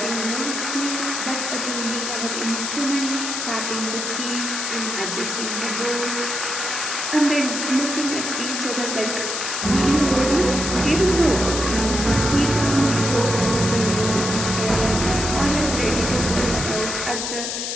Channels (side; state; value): left; noise; hiss, 3 dB below the sound